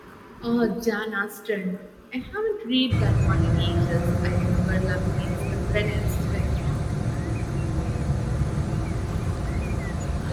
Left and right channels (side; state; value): both; identical; correlation 1.00